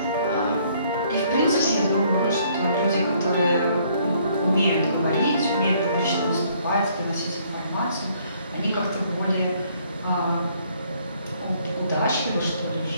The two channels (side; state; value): both; inverted; correlation -0.64